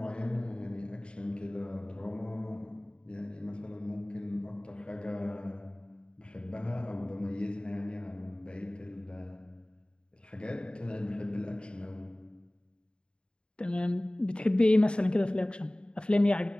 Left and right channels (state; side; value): late; right; 0.052 ms